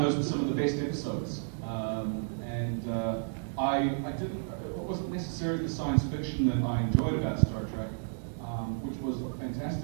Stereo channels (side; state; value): left; silent; digital silence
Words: those were some of the best episodes. It wasn't necessarily the science fiction that I enjoyed about Star Trek, which was